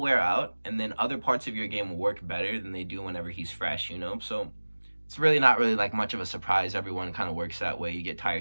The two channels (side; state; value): both; inverted; correlation -1.00